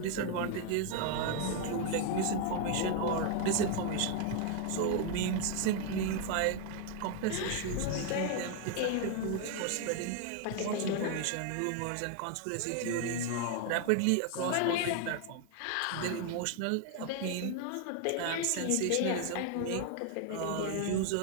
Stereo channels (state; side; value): different; both; correlation 0.00